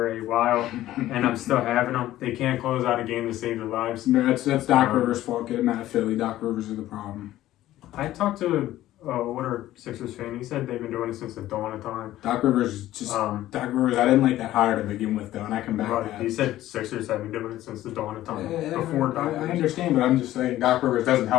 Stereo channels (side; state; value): right; quieter; 14.4 dB